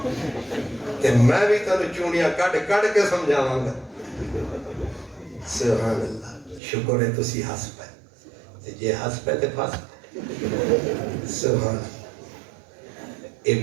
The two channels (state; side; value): drops out; left; at 6.6 s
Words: تے میں بھی تانوں چونیاں کڈ کڈ کے سمجھاواں گا۔ سبحان اللہ، شکر ہے تسی ہس پے، تے جے ہس پے تے پھس پے۔ سبحان اللہ، اے